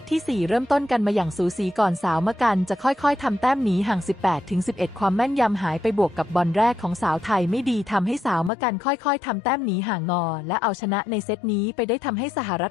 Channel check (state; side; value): drops out; right; at 8.5 s